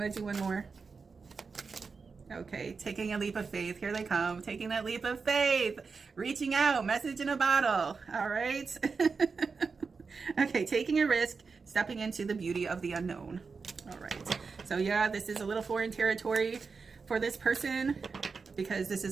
to do one more? Okay. Taking a leap of faith. Here they come. Taking that leap of faith. Reaching out. Message in a bottle. All right. Okay. Taking a risk. Stepping into the beauty of the unknown. All right. So yeah, this is a little foreign territory for this person because this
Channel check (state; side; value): quieter; left; 4.9 dB